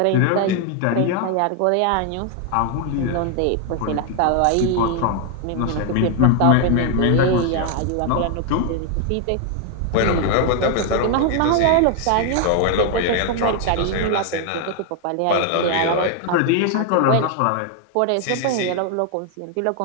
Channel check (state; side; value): different; both; correlation 0.00